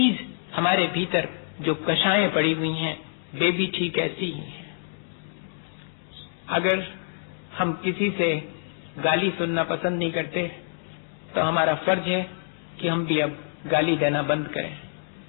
हमारे भीतर जो कषायें पड़ी हुई हैं वे भी ठीक ऐसी ही हैं। अगर हम किसी से गाली सुनना पसंद नहीं करते तो हमारा फर्ज है कि हम भी अब गाली देना बंद करें।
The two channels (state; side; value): silent; right; digital silence